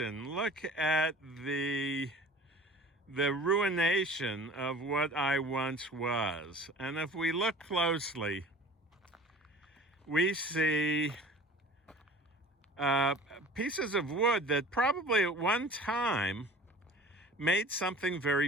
Look at the ruination of what I once was. And if we look closely, we see pieces of wood that probably at one time made something very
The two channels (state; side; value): normal; both; correlation 0.43